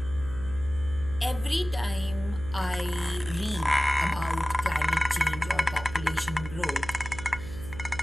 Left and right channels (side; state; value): right; noise; hum, 12 dB below the sound